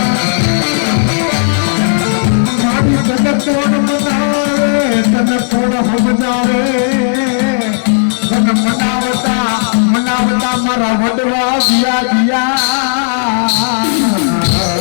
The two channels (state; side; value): silent; right; digital silence